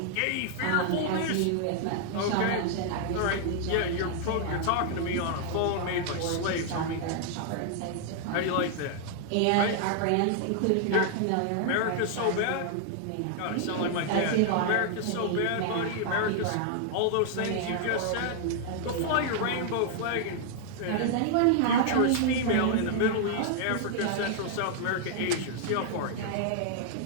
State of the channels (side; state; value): both; different; correlation -0.01